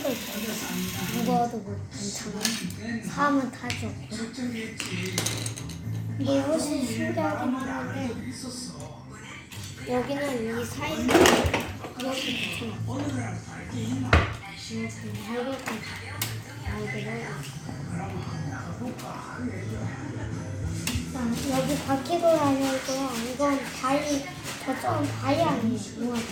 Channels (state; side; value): identical; both; correlation 1.00